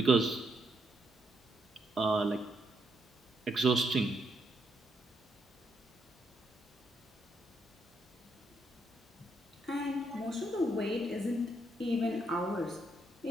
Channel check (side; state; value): both; normal; correlation 0.77